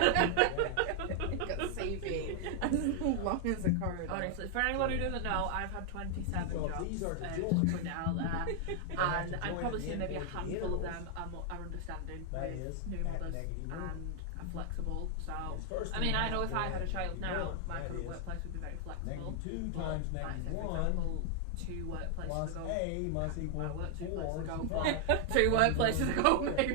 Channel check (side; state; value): both; different; correlation 0.00